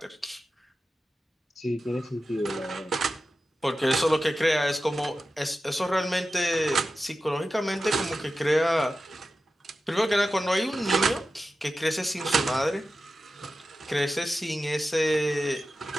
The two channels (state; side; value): normal; both; correlation 0.93